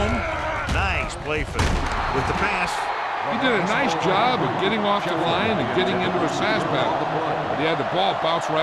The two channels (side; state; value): both; identical; correlation 1.00